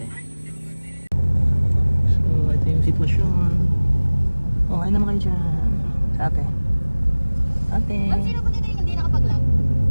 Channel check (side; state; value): both; inverted; correlation -1.00